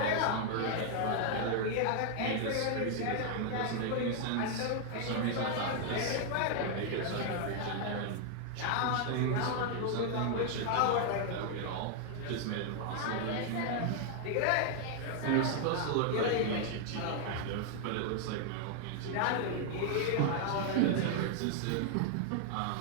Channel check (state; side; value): different; both; correlation 0.00